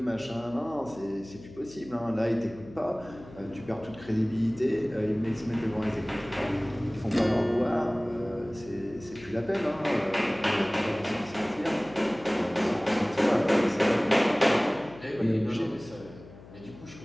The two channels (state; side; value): noise; left; hum, 19 dB below the sound